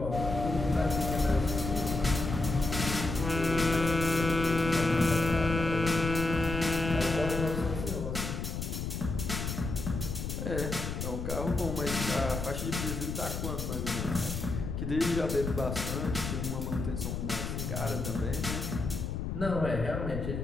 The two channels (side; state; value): left; noise; rumble, 4 dB below the sound